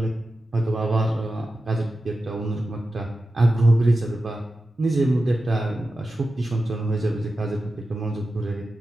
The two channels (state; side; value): normal; both; correlation 0.92